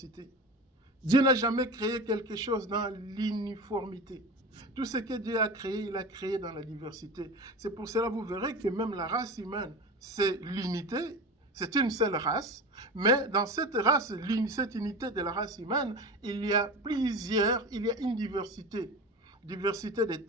Dieu n'a jamais créé quelque chose dans l'uniformité. Tout ce que Dieu a créé, il a créé dans la diversité. C'est pour cela que vous verrez que même la race humaine, c'est l'unité, c'est une seule race, mais dans cette race, cette unité de la race humaine, il y a une diversité. Diversité de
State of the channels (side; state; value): both; normal; correlation 0.29